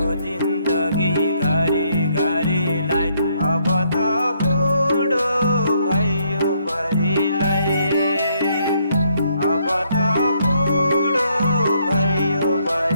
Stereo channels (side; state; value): both; inverted; correlation -0.71